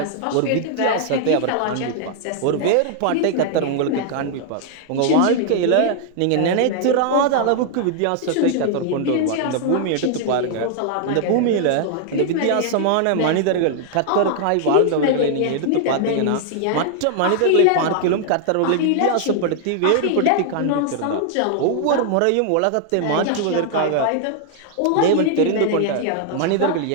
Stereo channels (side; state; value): both; different; correlation 0.00